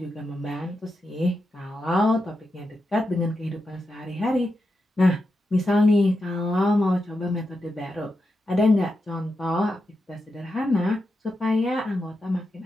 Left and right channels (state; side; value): normal; both; correlation 0.87